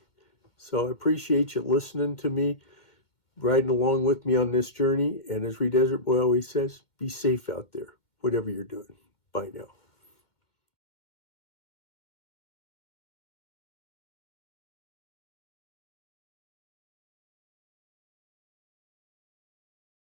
So I appreciate you listening to me, riding along with me on this journey. And as Desert Boy always says, be safe out there, whatever you're doing. Bye now.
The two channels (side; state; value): right; late; 2.1 ms